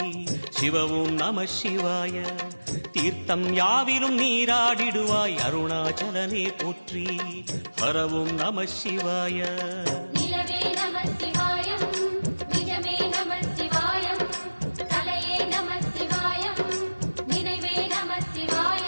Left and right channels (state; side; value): inverted; both; correlation -1.00